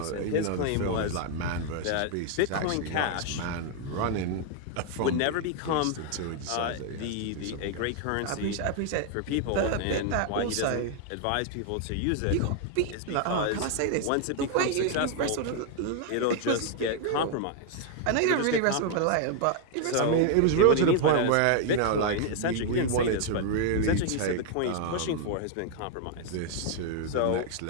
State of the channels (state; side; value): different; both; correlation 0.00